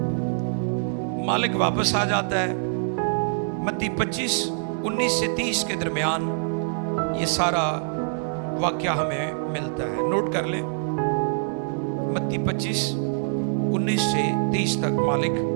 मालिक वापस आ जाता है। मत्ती 25:19 से 30 के दरमियान ये सारा वाक्या हमें मिलता है। नोट कर लें, मत्ती 25:19 से 30 तक मालिक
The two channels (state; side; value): silent; left; 58 dB below the other